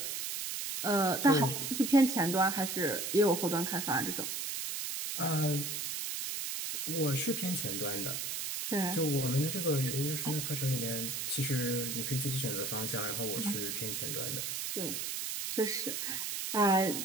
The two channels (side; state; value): right; noise; hiss, 3 dB below the sound